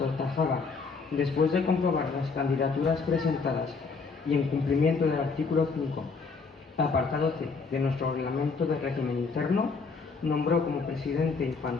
después de comprobar las candidaturas presentadas y en cumplimiento del artículo 5, apartado C de nuestro reglamento de régimen interno, nombró como presidente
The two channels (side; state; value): right; quieter; 4.7 dB